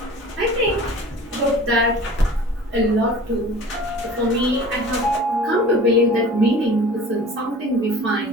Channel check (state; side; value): normal; both; correlation 0.42